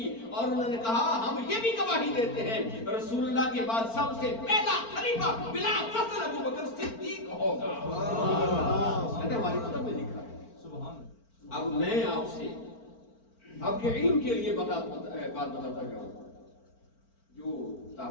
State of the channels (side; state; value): right; late; 4.4 ms